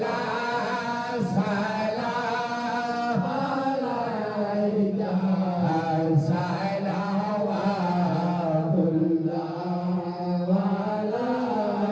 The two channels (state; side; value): identical; both; correlation 1.00